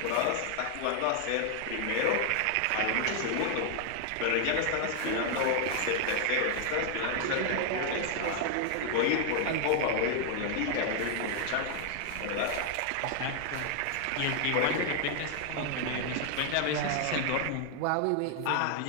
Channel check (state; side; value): different; both; correlation 0.00